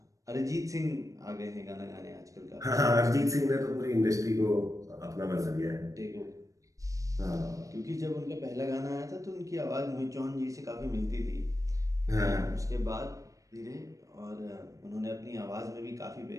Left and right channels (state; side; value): late; left; 0.16 ms